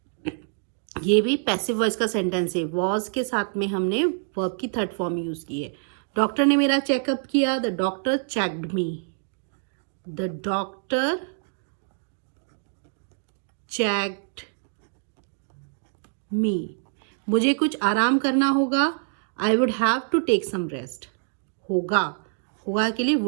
ये भी पैसिव वॉइस का सेंटेंस है, वॉज के साथ में हमने वर्ब की थर्ड फॉर्म यूज की है। डॉक्टर ने मेरा चेकअप किया, the doctor checked me, the doctor checked me. मुझे कुछ आराम करना होगा, I would have to take some rest. होगा, होगा के लिए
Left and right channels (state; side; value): silent; left; digital silence